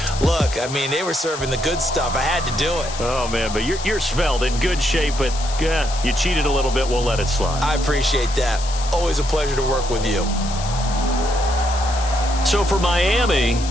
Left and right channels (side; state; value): left; noise; hiss, 11 dB below the sound